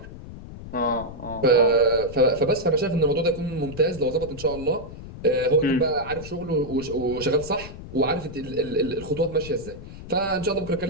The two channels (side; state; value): left; noise; rumble, 13 dB below the sound